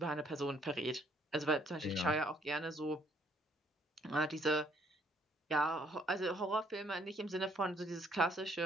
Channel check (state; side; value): normal; both; correlation 0.66